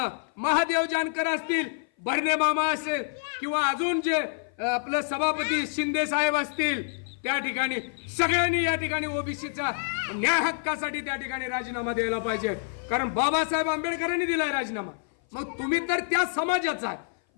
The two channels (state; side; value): silent; right; 57 dB below the other